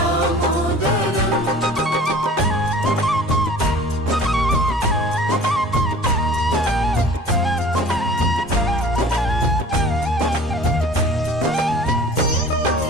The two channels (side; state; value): both; normal; correlation 0.45